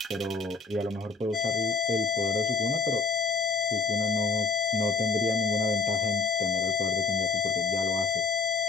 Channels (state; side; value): quieter; right; 4.6 dB